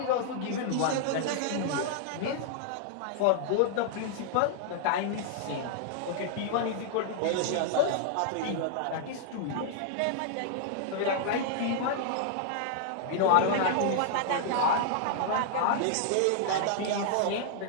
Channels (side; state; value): both; different; correlation -0.01